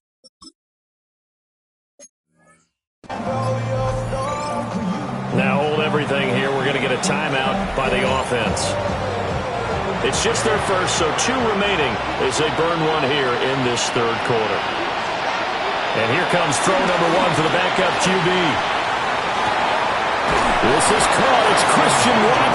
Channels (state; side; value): identical; both; correlation 1.00